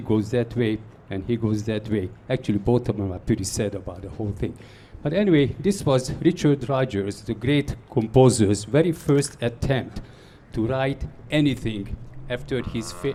goes that way and he goes that way. Actually, both of them are pretty sad about the whole thing. But anyway, this was Richard Rodgers, the great composer's very first attempt to write anything after his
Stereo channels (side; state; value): both; identical; correlation 1.00